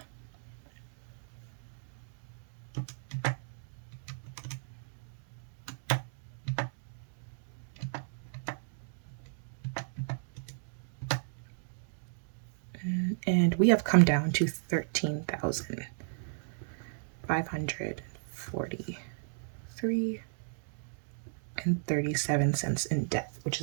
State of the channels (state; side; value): silent; left; digital silence